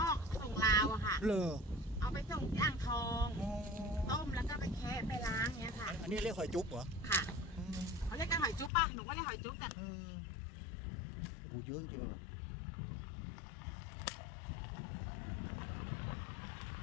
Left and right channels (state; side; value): drops out; right; at 8.7 s